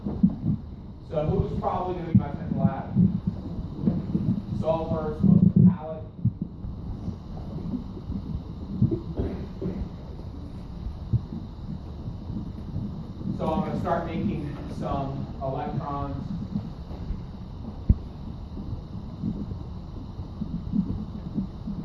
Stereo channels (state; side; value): identical; both; correlation 1.00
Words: So who's probably going to be my central atom? Sulfur, it's most metallic. So I'm going to start making some electrons.